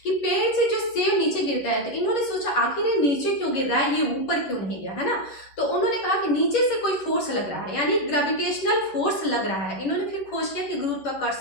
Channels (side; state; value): right; late; 11 ms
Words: कि पेड़ से जो सेब नीचे गिरता है, तो इन्होंने सोचा आखिर ये नीचे क्यों गिर रहा है, ये ऊपर क्यों नहीं गया, है ना। तो उन्होंने कहा कि नीचे से कोई फोर्स लग रहा है, यानी ग्रेविटेशनल फोर्स लग रहा है। इन्होंने फिर खोज किया कि